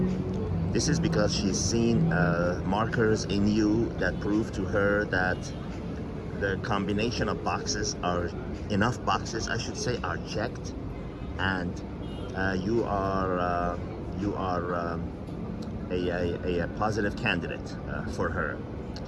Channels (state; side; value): identical; both; correlation 1.00